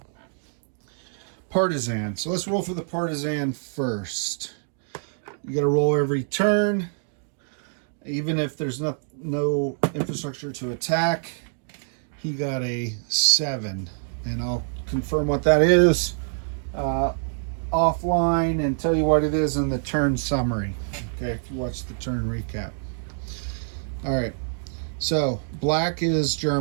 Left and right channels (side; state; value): left; silent; digital silence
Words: partisan. So let's roll for the partisan first. You got to roll every turn, even if there's no infrastructure to attack. He got a 7, and I'll confirm what that is offline and tell you what it is in the turn summary. Okay, if you watch the turn recap. All right, so black is